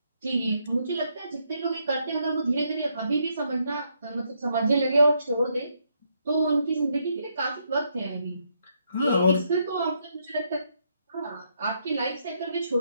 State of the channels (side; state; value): both; inverted; correlation -0.76